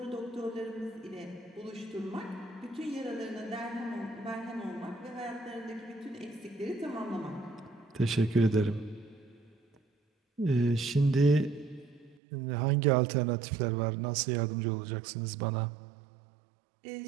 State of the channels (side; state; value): left; drops out; at 12.2 s